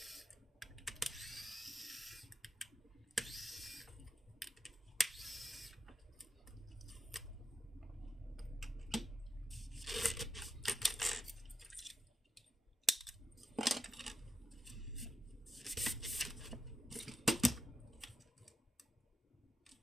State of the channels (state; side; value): normal; both; correlation 0.87